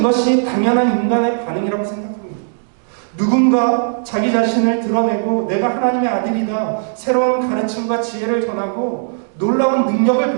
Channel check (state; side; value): silent; left; digital silence